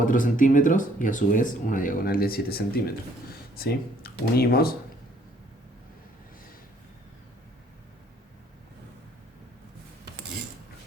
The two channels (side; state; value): both; normal; correlation 0.62